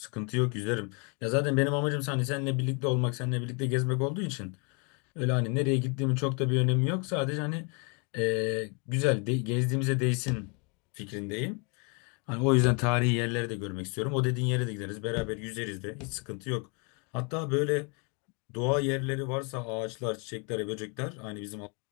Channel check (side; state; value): right; quieter; 34.3 dB